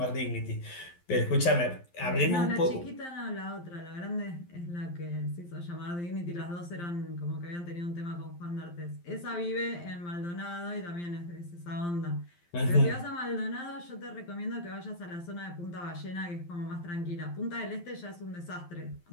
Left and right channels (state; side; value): late; right; 12 ms